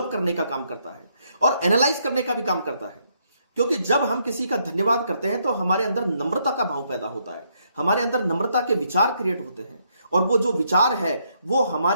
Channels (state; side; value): inverted; both; correlation -0.74